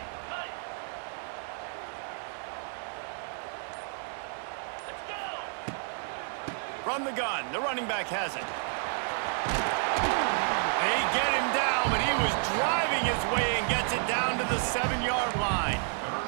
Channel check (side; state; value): left; silent; 56 dB below the other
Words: From the gun, the running back has it. They get him down, but he was driving his way and gets it down to the 7-yard line.